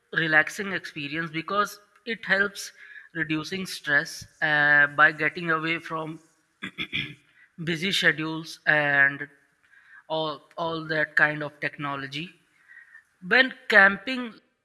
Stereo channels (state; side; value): identical; both; correlation 1.00